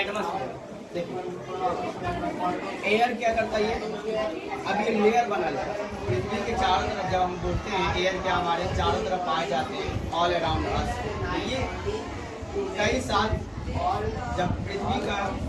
एटमॉस्फेयर। देखिए एयर क्या करता है? अब ये लेयर बना है पृथ्वी के चारों तरफ। जब हम बोलते हैं एयर क्या हमारे चारों तरफ पाए जाते हैं, ऑल अराउंड अस। ये कई साल जब पृथ्वी का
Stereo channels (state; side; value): identical; both; correlation 1.00